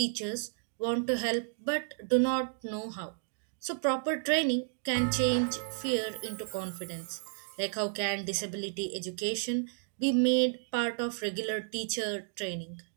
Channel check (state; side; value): silent; left; digital silence